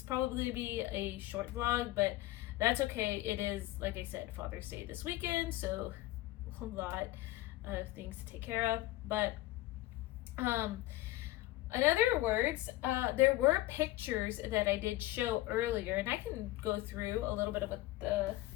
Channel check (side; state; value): right; quieter; 17.3 dB